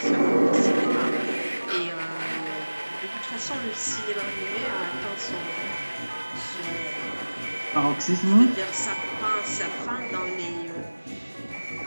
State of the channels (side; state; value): both; inverted; correlation -1.00